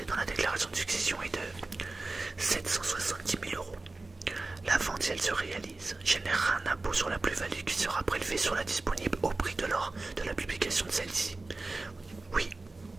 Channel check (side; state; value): left; quieter; 3.3 dB